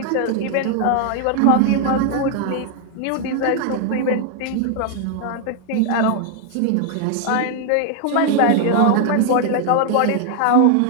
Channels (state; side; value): different; both; correlation 0.00